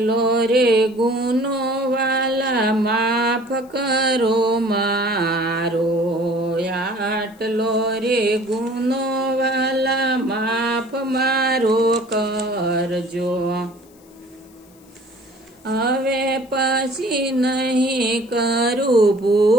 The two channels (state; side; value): noise; left; hiss, 29 dB below the sound